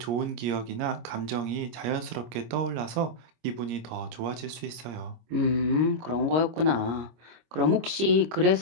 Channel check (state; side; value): late; left; 25 ms